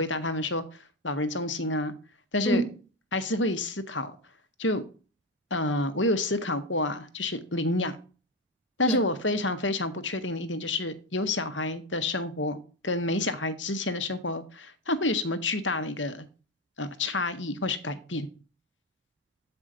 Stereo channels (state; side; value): normal; both; correlation 0.12